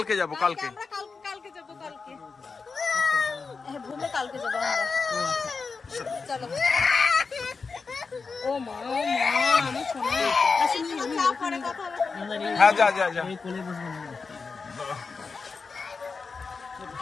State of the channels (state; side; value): quieter; right; 4.7 dB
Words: যাবো কালকে। কালকে যাবো কালকে ঘুমে, কালকে যাবো আমরা। চলো ও মা ও মা আমার সোনা। হ্যাঁ যা যা যা।